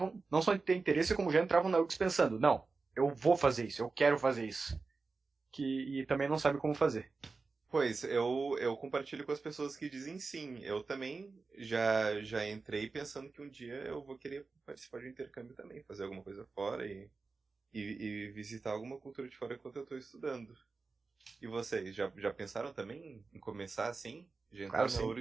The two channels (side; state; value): left; quieter; 4.1 dB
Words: não só de ter interesse, como já entravam na URGS pensando, não, eu vou fazer isso, eu quero fazer isso. E também não sabe como fazer. Pois, eu compartilho com as pessoas que dizem sim. Eu também já entrei pensando que um dia eu vou querer participar de um intercâmbio também, fazer alguma coisa fora e visitar alguma cultura de fora enquanto eu estou estudando. E vocês, já pensaram também em começar assim? Já entraram na